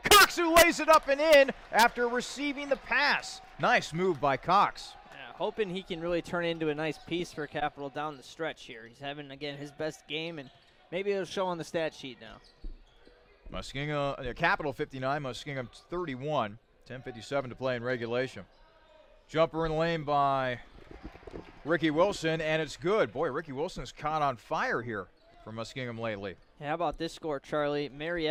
who lays it up and in after receiving the pass. Nice move by Cox. Yeah, hoping he can really turn into a nice piece for Capital down the stretch here. He's having, again, his best game, and maybe it'll show on the stat sheet now. Muskingum, Capital 59, Muskingum 31. 10:57 to play in regulation. Jumper in the lane by Ricky Wilson, and it's good. Boy, Ricky Wilson's caught on fire here for Muskingum lately. Yeah, how about this score, Charlie?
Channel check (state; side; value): identical; both; correlation 1.00